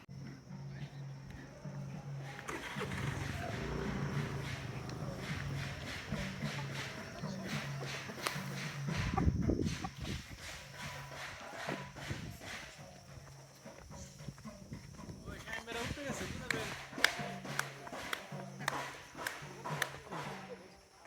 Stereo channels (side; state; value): both; identical; correlation 1.00